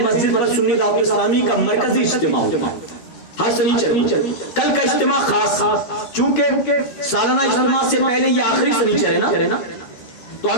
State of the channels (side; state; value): right; late; 13 ms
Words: مسجد پر سنی دعوت اسلامی کا مرکزی اجتماع ہوتا ہے ہر سنیچر. کل کا اجتماع خاص, چونکہ سالانہ اجتماع سے پہلے یہ آخری سنیچر ہے نا, تو